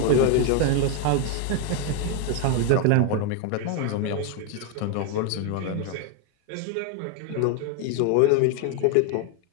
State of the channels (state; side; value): different; both; correlation 0.01